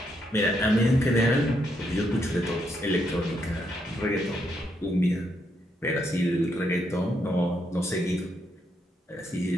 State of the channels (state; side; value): normal; both; correlation 0.77